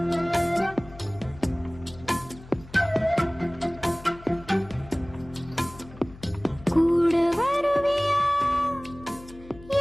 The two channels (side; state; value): left; noise; hum, 19 dB below the sound